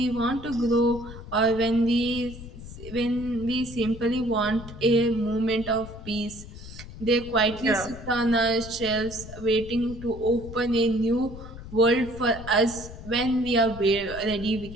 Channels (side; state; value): left; noise; rumble, 13 dB below the sound